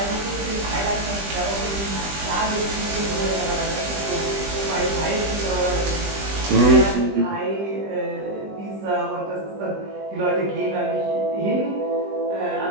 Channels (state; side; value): late; left; 20 ms